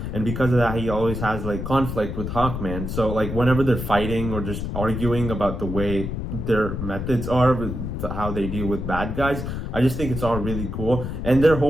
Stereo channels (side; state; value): left; noise; rumble, 5 dB below the sound